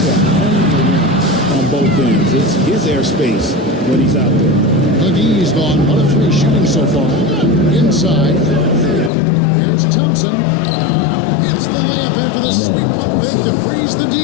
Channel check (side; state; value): right; drops out; at 9.1 s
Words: hone the rim on both ends. It's his airspace when he's out there. McGee's gone 1 of 3 shooting so far. Inside. Here's Thompson. Hits the layup after the sweet pump fake to freeze the